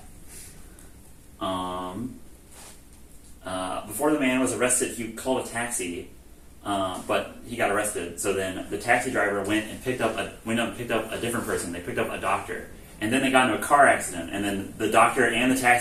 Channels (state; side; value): identical; both; correlation 1.00